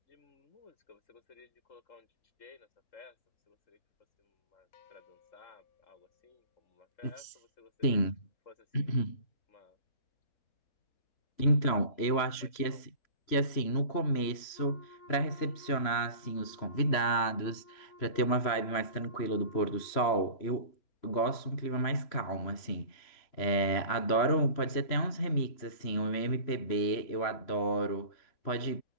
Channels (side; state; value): right; late; 3.1 ms